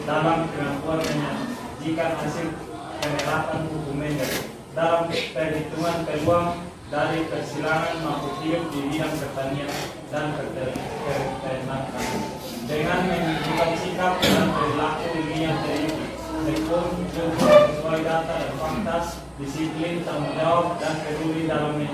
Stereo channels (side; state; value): both; identical; correlation 1.00